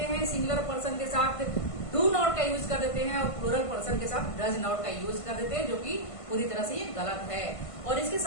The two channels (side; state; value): right; late; 1.5 ms